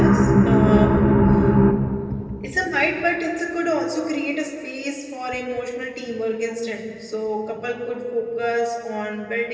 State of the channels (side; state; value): both; identical; correlation 1.00